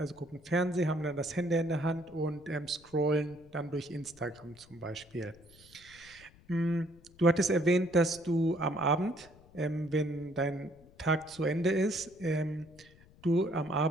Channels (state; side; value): noise; left; rumble, 25 dB below the sound